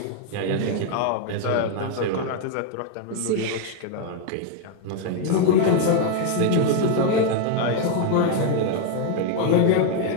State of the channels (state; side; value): different; both; correlation 0.00